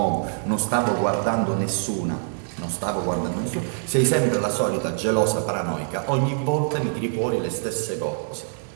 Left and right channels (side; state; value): left; silent; digital silence